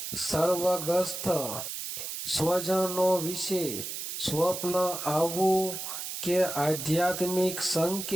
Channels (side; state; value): right; noise; hiss, 6 dB below the sound